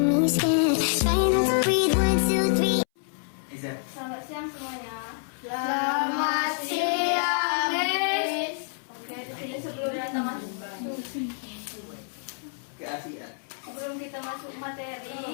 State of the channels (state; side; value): silent; right; 60 dB below the other